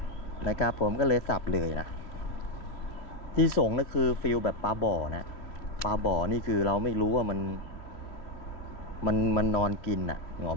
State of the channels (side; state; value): right; late; 3.0 ms